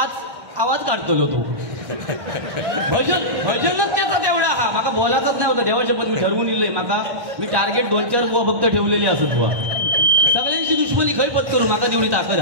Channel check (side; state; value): left; late; 1.1 ms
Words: आवाज काढतो तो भजनच त्याचा तेवढा हा माका बोलायचंच नाही होतं देवाच्या पण मी ठरवून इलंय माका मी टार्गेट 2-4 बुवा फक्त ठेवलेली असत बुवा सगळ्यांशी दुश्मनी खय पत्करू माका तेवढी ताकद